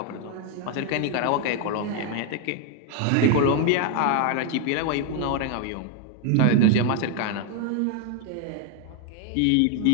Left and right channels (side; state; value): both; different; correlation 0.01